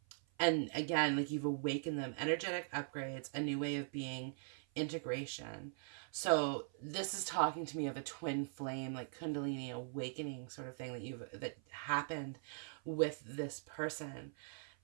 again, you've awakened them. Energetic upgrades, a new way of being, integration. So this is talking to me of a twin flame, Kundalini awakening sort of thing that happened with this person.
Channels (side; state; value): left; silent; 50 dB below the other